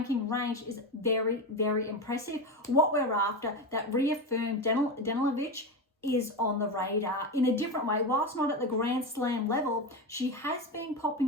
range, is very, very impressive. What we're after, that reaffirmed Danilovic is on the radar in a different way. Whilst not at the Grand Slam level, she has been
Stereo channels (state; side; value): normal; both; correlation 0.18